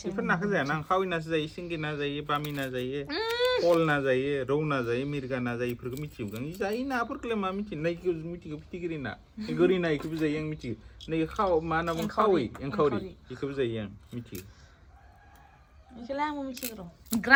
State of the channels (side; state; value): both; identical; correlation 1.00